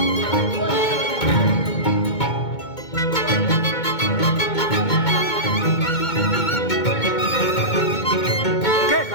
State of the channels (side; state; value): right; late; 2.2 ms